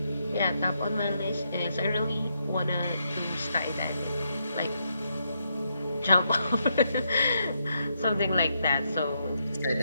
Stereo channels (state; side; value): inverted; both; correlation -0.79